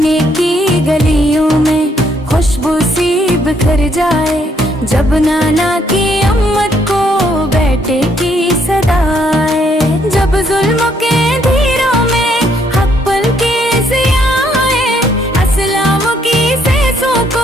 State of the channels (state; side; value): normal; both; correlation 0.71